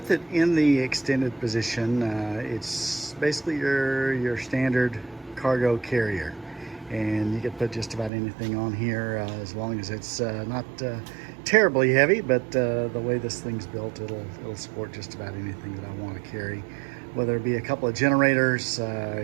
it in the extended position, it's basically your standard cargo carrier, and you can put just about anything on here as long as it's not terribly heavy, but the way this thing's built, it'll support just about anything that I want to carry, whether it be a couple of generators,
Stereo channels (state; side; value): drops out; left; at 8.1 s